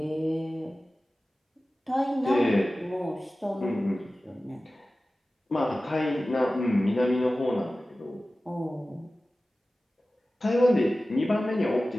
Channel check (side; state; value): both; normal; correlation 0.96